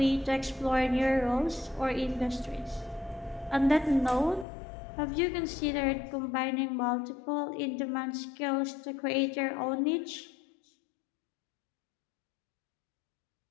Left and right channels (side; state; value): right; drops out; at 4.5 s